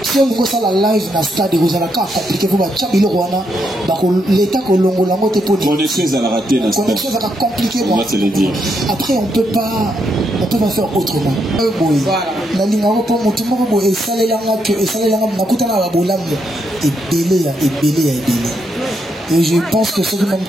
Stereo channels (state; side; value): normal; both; correlation 0.79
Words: Si on voit ça la live dans le stade, vous allez compliquer pour l'État que l'on a connexion à rater dans le stade. Connexion à compliquer. On va te le dire. Après, on peut pas faire autrement. La ligne à repos, mon tout le monde est salé là, et salé là, on a coûté là, et belé. Et je pense que ce qui même